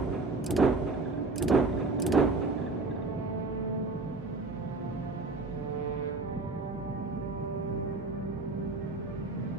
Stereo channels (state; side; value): quieter; left; 3.3 dB